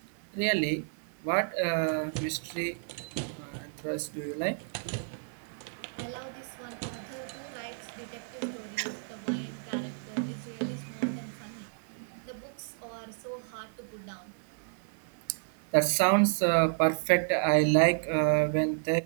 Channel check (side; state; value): left; silent; 57 dB below the other